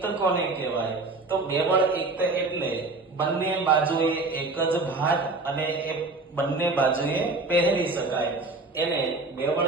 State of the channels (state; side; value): quieter; left; 3.4 dB